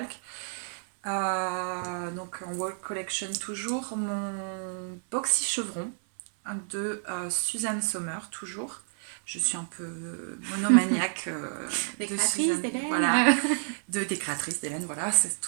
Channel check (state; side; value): silent; left; 58 dB below the other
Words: Donc en World Collection toujours, mon boxy chevron de Suzanne Sommer, toujours. Je suis un peu monomaniaque de créatrice d'Hélène. Voilà, des créatrices d'Hélène, voilà, c'est